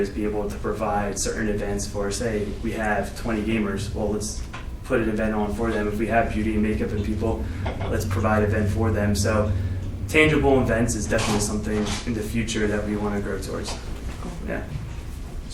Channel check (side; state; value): both; identical; correlation 1.00